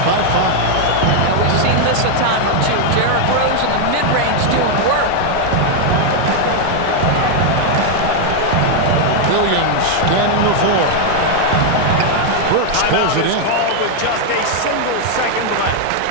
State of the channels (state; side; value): different; both; correlation 0.00